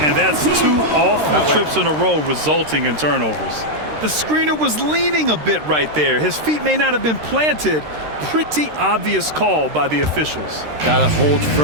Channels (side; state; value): left; late; 13 ms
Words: And that's 2 awful trips in a row resulting in turnovers. The screener was leaning a bit right there. His feet may not have been planted. Pretty obvious call by the officials. Gotta hold